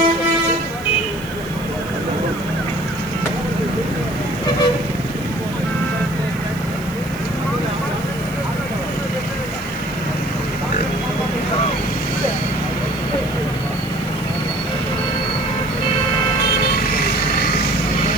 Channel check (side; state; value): right; noise; hiss, 20 dB below the sound